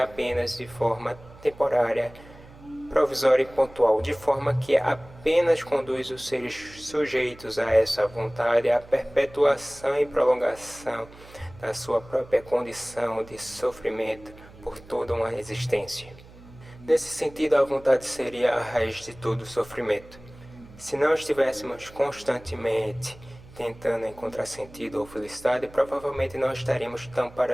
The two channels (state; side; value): noise; right; hum, 21 dB below the sound